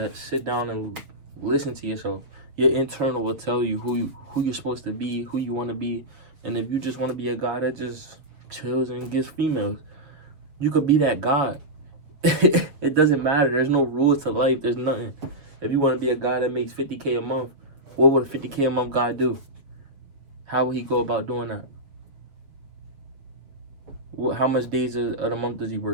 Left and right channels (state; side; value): late; left; 6.9 ms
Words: Sit down and listen to yourself. Your internal will tell you who you're supposed to be, who you want to be. And if you just want to be a guy that just chills and gets females, you could be that guy. It doesn't matter. There's no rules to life. There's nothing. If you want to be a guy that makes $50K a month, what would a $50K a month guy do? How would he go about doing that? How much days of the month does he